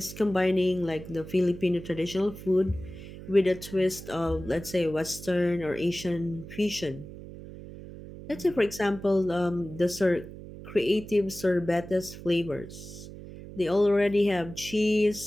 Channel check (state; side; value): noise; right; hum, 14 dB below the sound